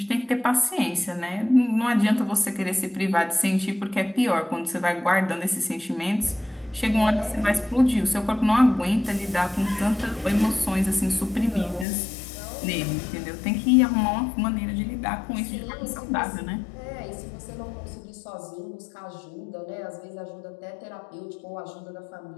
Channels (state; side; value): drops out; right; at 11.9 s